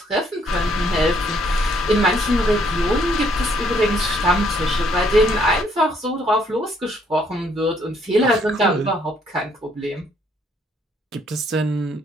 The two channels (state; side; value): normal; both; correlation 0.67